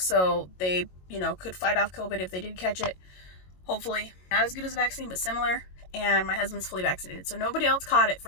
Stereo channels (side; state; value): right; late; 22 ms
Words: they, could fight off COVID if they did catch it. Hopefully. Not as good as a vaccine, but similar. And my husband's fully vaccinated, so nobody else caught it